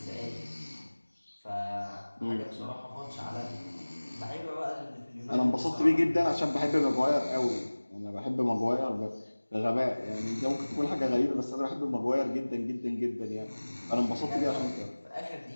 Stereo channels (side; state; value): both; inverted; correlation -1.00